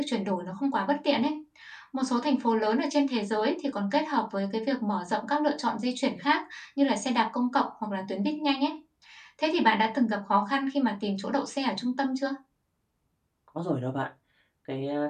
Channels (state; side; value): identical; both; correlation 1.00